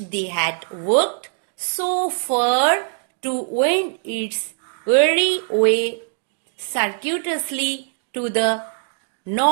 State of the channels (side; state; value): left; silent; digital silence